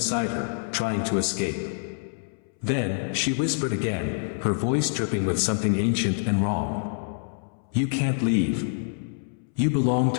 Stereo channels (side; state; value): right; silent; 61 dB below the other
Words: her, trying to escape. Then, she whispered again, her voice dripping with something ancient and wrong. "You can't leave. You belong